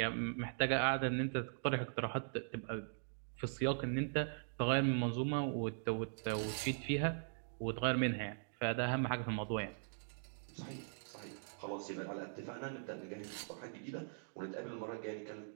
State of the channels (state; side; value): silent; left; digital silence